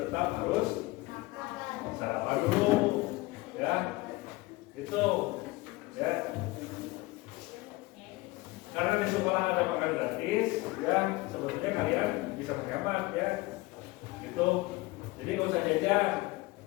tetap harus sarapan dulu, ya. Itu, ya. Karena di sekolah ada makan gratis, ya sebetulnya kalian bisa menghemat, ya. Gitu. Jadi nggak usah jajan,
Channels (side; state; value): right; quieter; 21.5 dB